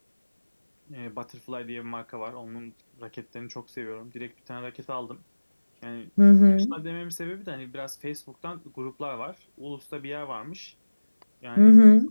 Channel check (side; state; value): both; inverted; correlation -1.00